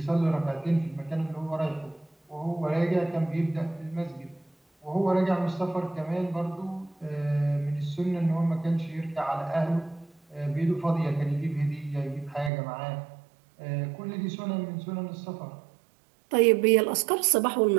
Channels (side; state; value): left; drops out; at 12.5 s